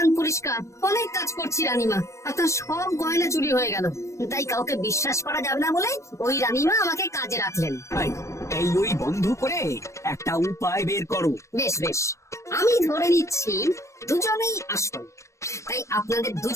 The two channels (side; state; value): right; late; 0.15 ms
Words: পরিষ্কার, অনেক কাজ করছি রানীমা। আপনার সব গয়না চুরি হয়ে গেল, তাই কাউকে বিশ্বাস করা যাবে না বলে ওই রানীমা আমাকে কাজে রাখলেন। এই ওই বন্ধ করে একটা উপায় বের করো। বেশ বেশ, আমি ধরে নিচ্ছি দুজনেই আসল। তাই আপনাদের